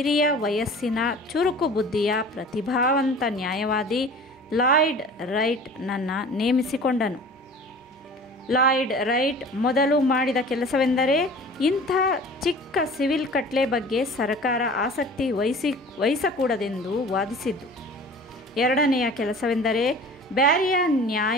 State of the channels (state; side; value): normal; both; correlation 0.43